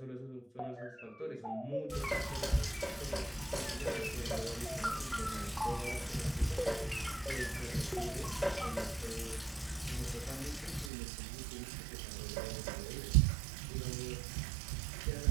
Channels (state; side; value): drops out; left; at 10.9 s